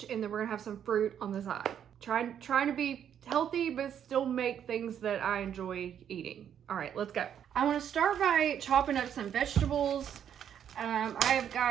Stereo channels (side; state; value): left; quieter; 9.1 dB